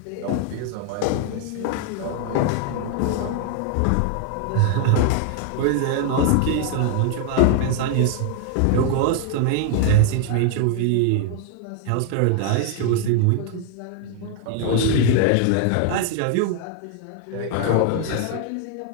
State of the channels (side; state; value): both; different; correlation 0.00